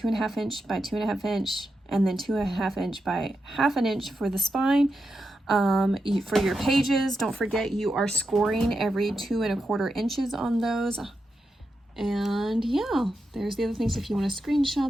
inch by 2.5 inch, and then 2.5 inch by 1/2 inch for the spine. For your pages, don't forget you are scoring every 2 1/4 inches on those. And yeah, there's the other things if you want to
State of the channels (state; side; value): normal; both; correlation 0.87